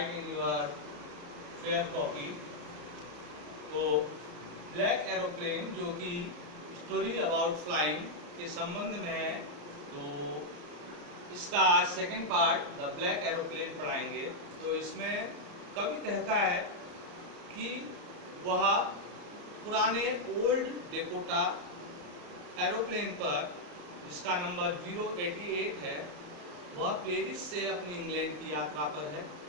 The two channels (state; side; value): late; left; 34 ms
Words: in your fair copy. तो ब्लैक एरोप्लेन जो कि स्टोरी अबाउट फ्लाइंग के संबंध में है, तो इसका आज second part the black aeroplane पढ़ाएंगे। तो इसमें कवि कहता है कि वह पुराने ओल्ड डेकोटा एरोप्लेन पर, जिसका नंबर 088 है, वह पेरिस से अपनी इंग्लैंड की यात्रा पर है।